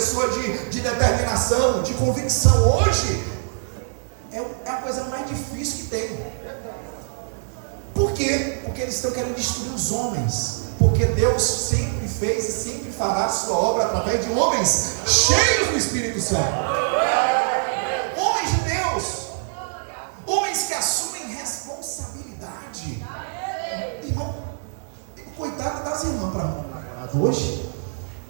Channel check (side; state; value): left; silent; digital silence